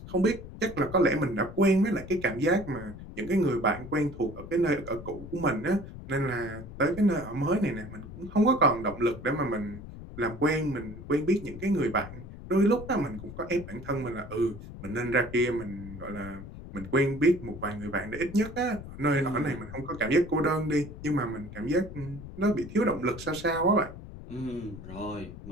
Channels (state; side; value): noise; left; rumble, 13 dB below the sound